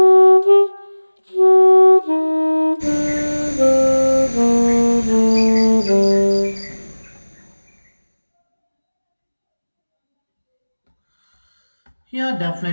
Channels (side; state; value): both; inverted; correlation -1.00